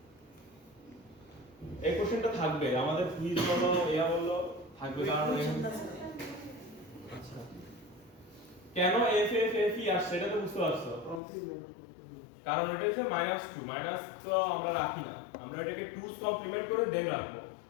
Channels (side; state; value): right; drops out; at 11.2 s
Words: এই কোশ্চেনটা থাকবে আমাদের কুইজ বলো ইয়া বললো থাকবে কারণ আচ্ছা কেন f f f e আসছে এটা তো বুঝতে পারছো কারণ এটা হচ্ছে -2 মাইনাস তো আমরা রাখি না আমরা এটাকে 2's কমপ্লিমেন্ট করে দেন রাখবো